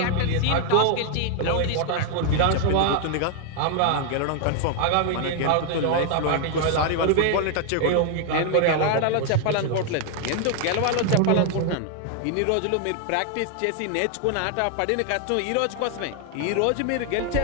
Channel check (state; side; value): different; both; correlation 0.00